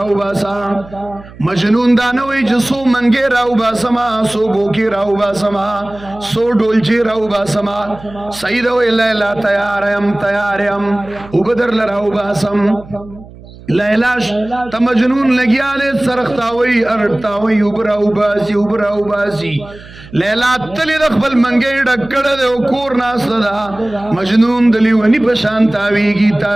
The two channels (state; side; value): noise; right; hum, 19 dB below the sound